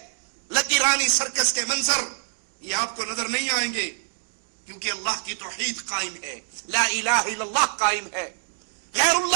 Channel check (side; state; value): left; silent; 62 dB below the other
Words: لکی رانی سرکس کے منظر، یہ آپ کو نظر نہیں آئیں گے، کیونکہ اللہ کی توحید قائم ہے، لا الہ الا اللہ قائم ہے۔ غیر